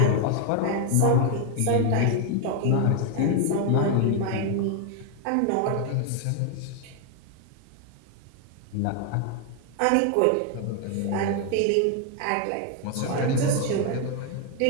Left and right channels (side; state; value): both; different; correlation 0.01